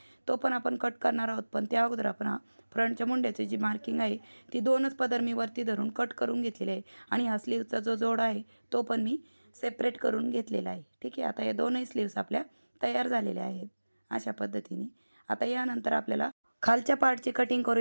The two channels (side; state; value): both; inverted; correlation -1.00